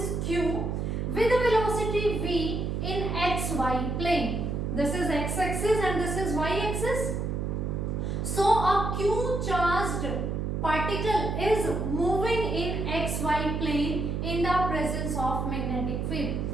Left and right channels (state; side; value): noise; right; hum, 1 dB below the sound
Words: q with a velocity v in xy plane. This is x-axis and this is y-axis. So a q charged particle is moving in xy plane in the presence of magnetic field,